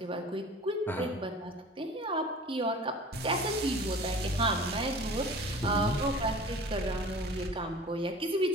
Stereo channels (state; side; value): normal; both; correlation 0.42